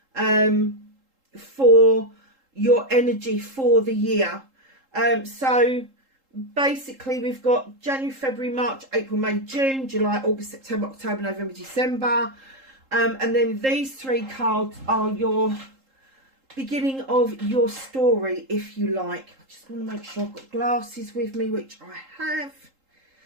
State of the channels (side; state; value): left; late; 3.8 ms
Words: for your energy for the year. So basically we've got January, February, March, April, May, June, July, August, September, October, November, December. And then these 3 cards are your beginning of your story, if you like. I just want to make sure I've got glasses with me, which I have.